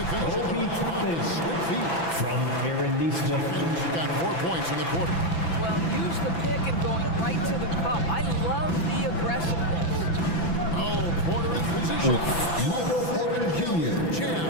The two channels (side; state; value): right; late; 6.0 ms